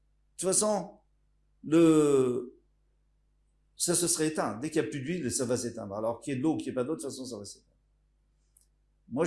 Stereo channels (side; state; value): both; identical; correlation 1.00